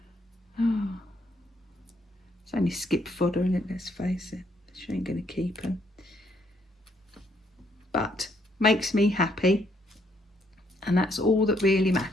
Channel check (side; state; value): both; normal; correlation 0.71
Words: Oh. It's only skip fodder, isn't it? Let's face it. She ain't going to keep them. But makes me happy. And that's all that really